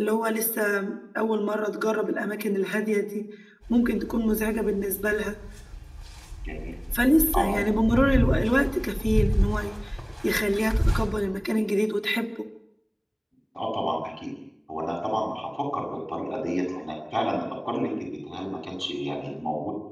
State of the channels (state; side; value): identical; both; correlation 1.00